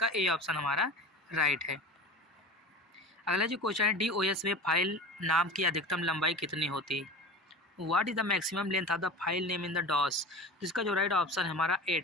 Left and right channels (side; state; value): both; normal; correlation 0.34